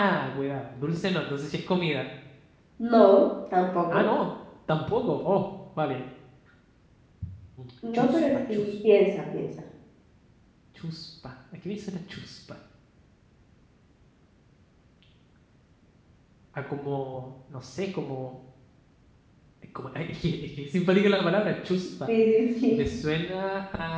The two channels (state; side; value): identical; both; correlation 1.00